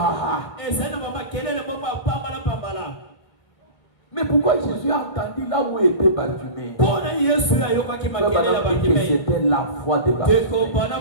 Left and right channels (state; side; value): late; right; 1.6 ms